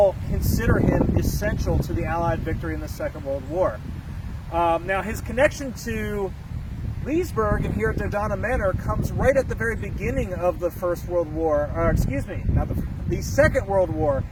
consider him essential to the Allied victory in the Second World War. Now, his connection to Leesburg and here at Dodona Manor comes right at the very beginning of the First World War, or excuse me, not the Second World War.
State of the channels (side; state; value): both; identical; correlation 1.00